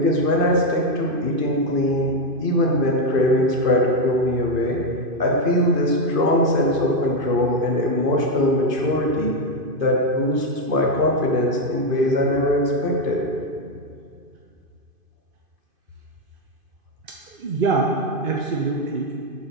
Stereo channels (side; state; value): left; late; 2.5 ms